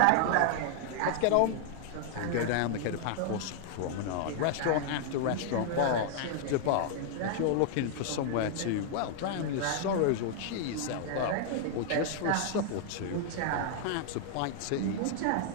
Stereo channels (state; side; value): different; both; correlation -0.01